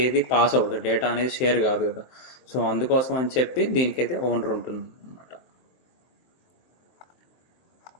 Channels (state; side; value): late; right; 23 ms